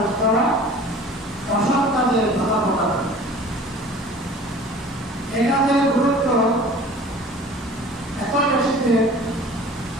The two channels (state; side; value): normal; both; correlation 0.45